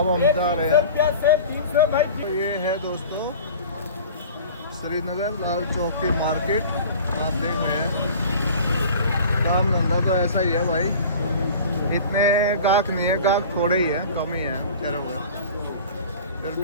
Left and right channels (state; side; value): inverted; both; correlation -0.41